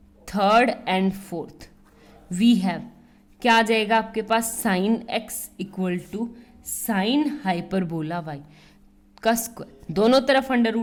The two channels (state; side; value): identical; both; correlation 1.00